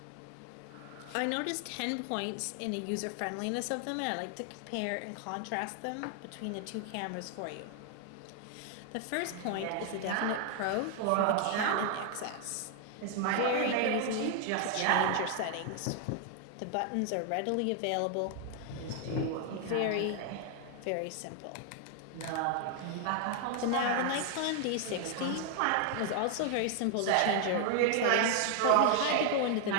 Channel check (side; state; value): both; different; correlation 0.00